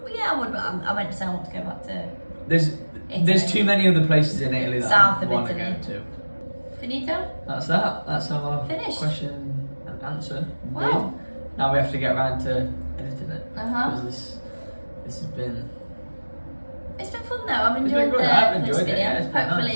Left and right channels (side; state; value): both; inverted; correlation -1.00